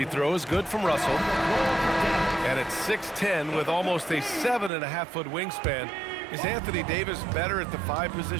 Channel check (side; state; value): left; drops out; at 4.7 s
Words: throw is good from Russell. And it's 6'10" with almost a 7.5-foot wingspan. Is Anthony Davis better at the 5